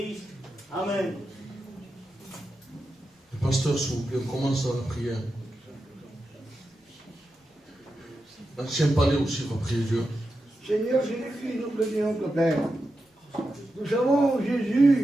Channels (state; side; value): normal; both; correlation 0.89